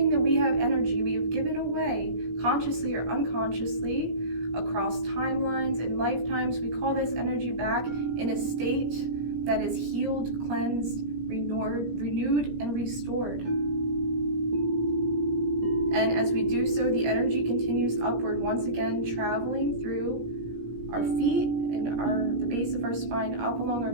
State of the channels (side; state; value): left; late; 17 ms